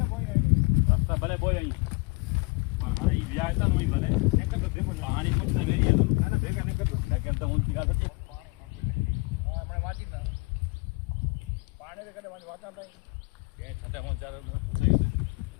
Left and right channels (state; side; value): quieter; right; 27.4 dB